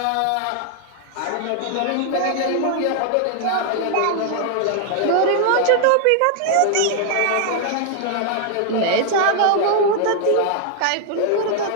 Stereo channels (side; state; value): both; different; correlation 0.00